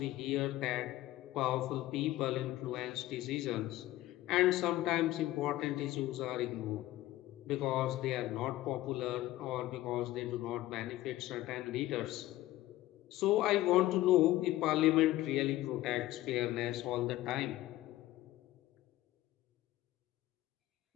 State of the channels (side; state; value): right; quieter; 16.1 dB